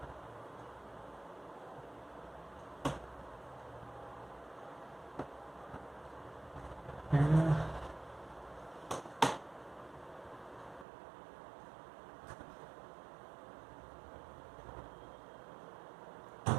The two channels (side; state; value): left; drops out; at 10.9 s